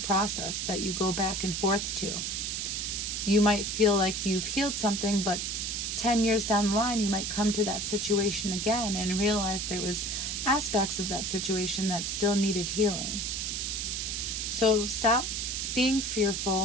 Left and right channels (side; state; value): right; noise; hiss, 2 dB below the sound